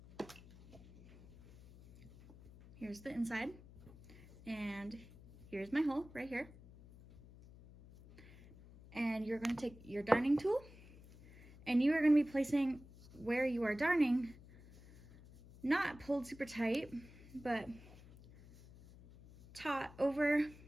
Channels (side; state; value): left; noise; hum, 20 dB below the sound